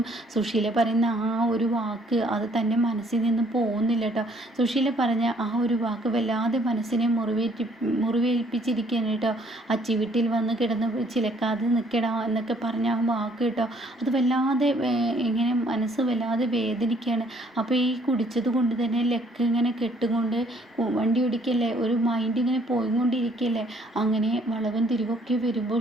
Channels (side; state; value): both; normal; correlation 0.63